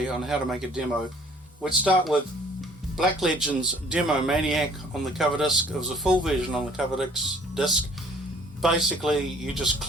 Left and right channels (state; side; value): normal; both; correlation 0.56